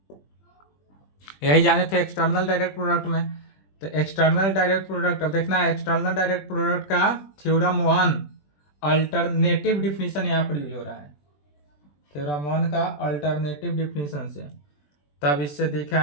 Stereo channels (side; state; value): right; late; 20 ms